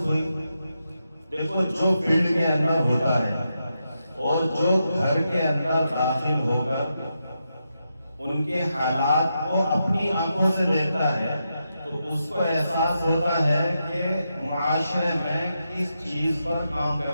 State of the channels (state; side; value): inverted; both; correlation -0.86